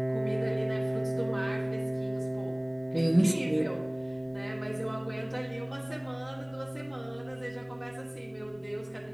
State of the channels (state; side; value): noise; left; rumble, 30 dB below the sound